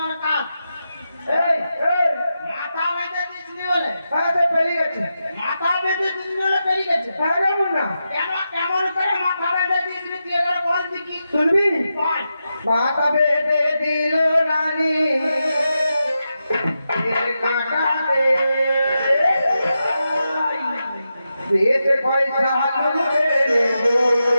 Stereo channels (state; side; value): inverted; both; correlation -0.89